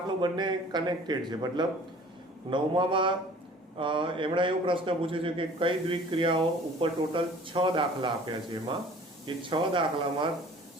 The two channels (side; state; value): both; normal; correlation 0.49